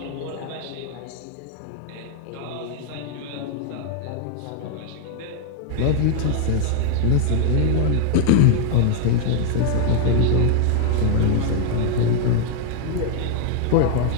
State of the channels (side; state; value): both; different; correlation 0.00